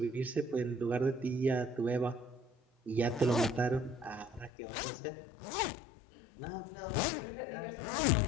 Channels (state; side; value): drops out; right; at 4.5 s